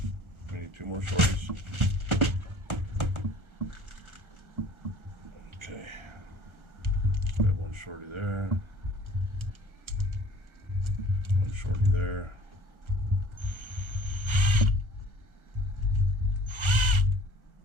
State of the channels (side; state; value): left; late; 1.3 ms